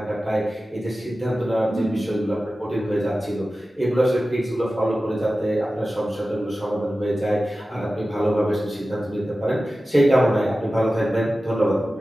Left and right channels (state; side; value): normal; both; correlation 0.95